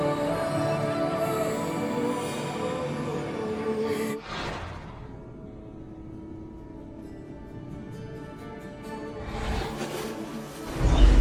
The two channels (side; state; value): both; identical; correlation 1.00